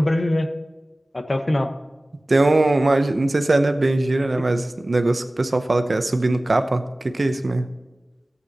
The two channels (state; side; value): normal; both; correlation 0.98